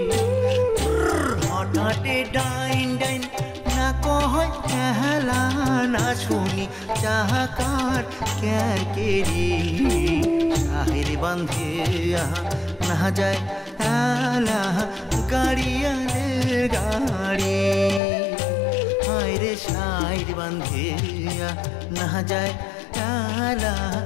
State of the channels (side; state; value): right; drops out; at 18.0 s